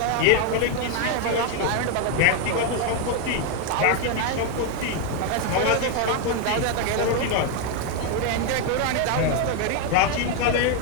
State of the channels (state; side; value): different; both; correlation 0.01